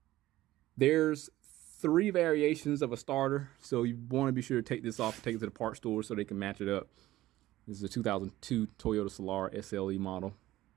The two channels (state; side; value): quieter; left; 15.9 dB